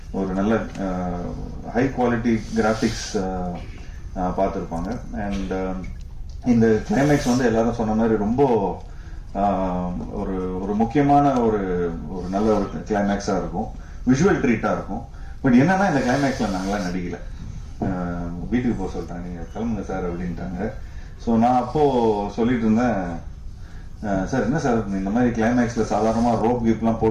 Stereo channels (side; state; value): both; identical; correlation 1.00